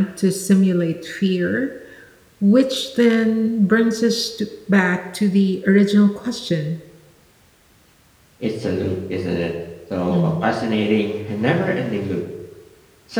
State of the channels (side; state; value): both; identical; correlation 1.00